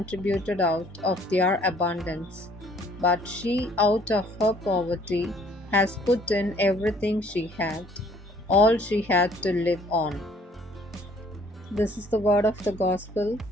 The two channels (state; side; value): normal; both; correlation 0.59